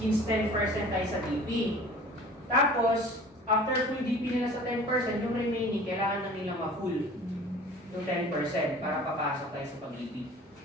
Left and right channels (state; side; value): normal; both; correlation 0.45